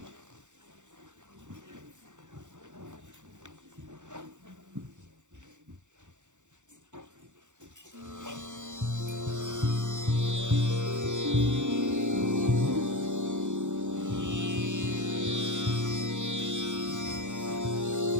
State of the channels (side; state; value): left; late; 0.85 ms